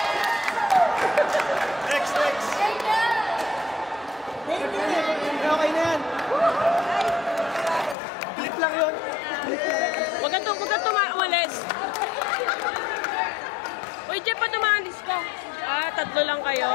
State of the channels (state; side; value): drops out; right; at 8.0 s